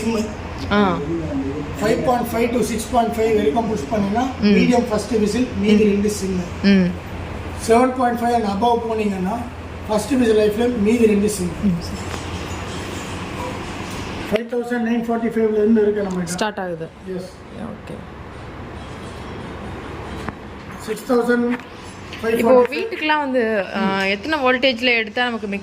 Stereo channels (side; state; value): both; identical; correlation 1.00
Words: 5.5 to 6.5 வரைக்கும் புஷ் பண்ணிங்கன்னா மீடியம் ஃபர்ஸ்ட் விசில், மீதி 2 சிம்மு. 7.5 அண்ட் அபவ் போனீங்கன்னா ஃபர்ஸ்ட் விசில் லைஃப் ஃப்ளேம், மீதி 2 சிம்மு. 5945 இருந்து இருக்கு நம்ம ஸ்டார்ட் ஆகுது. எஸ். ஓகே. 6500. இப்போ வீட்டுக்குலாம் வந்து எத்தனை வோல்டேஜில் எடுத்தால் நமக்கு